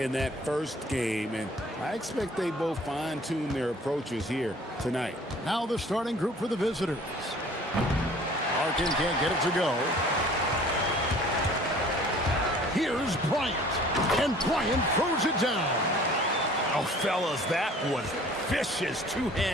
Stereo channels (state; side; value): normal; both; correlation 0.51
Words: that first game, and I expect they both fine-tune their approaches here tonight. Now the starting group for the visitors. Larkin can't get it to go. Here's Bryant, and Bryant throws it down. Oh, fellas, that was vicious